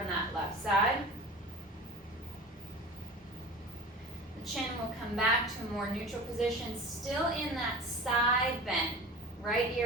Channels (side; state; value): both; normal; correlation 0.36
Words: that left side. The chin will come back to a more neutral position, still in that side bend, right